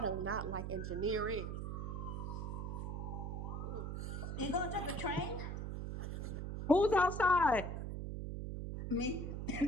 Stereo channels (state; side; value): noise; right; hum, 4 dB below the sound